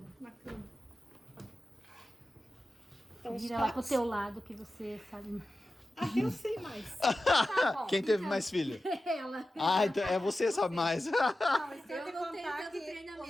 na cama. Então, os Vira lá pro pratos. teu lado que você sabe. Ah, eu sei mais. Tá bom, Quem teve então, mais filho? Ela. Ah, então é você sabe mais. Não, mas tem Eu que não tenho contar tanto que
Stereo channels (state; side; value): normal; both; correlation 0.94